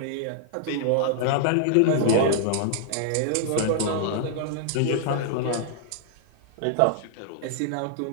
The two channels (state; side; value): different; both; correlation -0.01